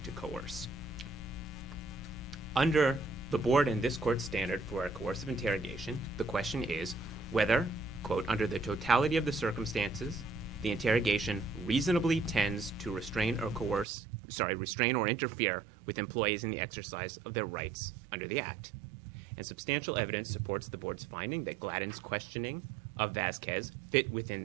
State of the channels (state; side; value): drops out; left; at 13.9 s